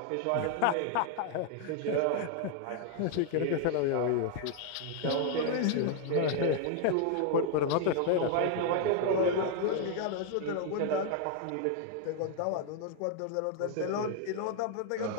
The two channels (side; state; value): both; different; correlation 0.00